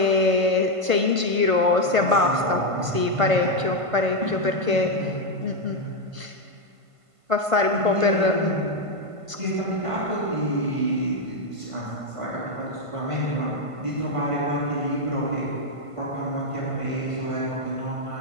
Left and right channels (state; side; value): late; left; 1.5 ms